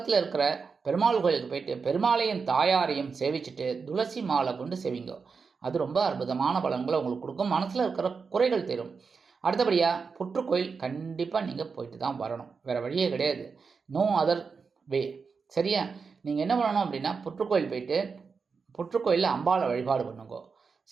இருக்கிற பெருமாள் கோயிலுக்கு போயிட்டு பெருமாளையும் தாயாரையும் சேவிச்சுட்டு துளசி மாலை கொண்டு சேவிங்கோ. அது ரொம்ப அற்புதமான பலன்களை உங்களுக்கு கொடுக்கும், மனசில் இருக்கிற குறைகள் தரும். அடுத்தபடியாக புற்றுக்கோயில் கண்டிப்பாக நீங்கள் போயிட்டு தான் வரணும், வேறு வழியே கிடையாது. No other way. சரியா? நீங்கள் என்ன பண்ணணும் அப்படின்னா புற்றுக்கோயில் போயிட்டு புற்றுக்கோயிலில் அம்பாளை வழிபாடு பண்ணுங்கோ.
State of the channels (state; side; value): quieter; left; 5.2 dB